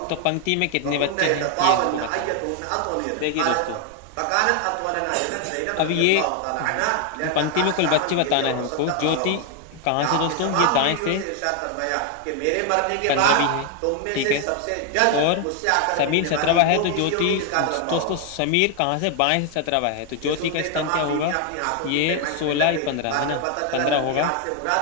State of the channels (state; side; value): different; both; correlation 0.01